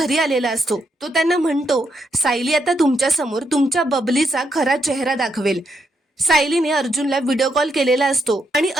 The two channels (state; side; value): normal; both; correlation 0.79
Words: आलेला असतो। तो त्यांना म्हणतो, सायली आता तुमच्या समोर तुमच्या बबलीचा खरा चेहरा दाखवेल। सायलीने अर्जुनला व्हिडिओ कॉल केलेला असतो आणि